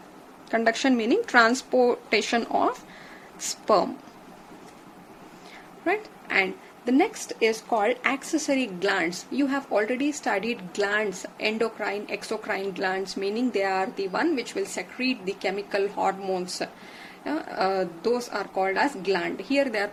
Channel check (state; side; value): identical; both; correlation 1.00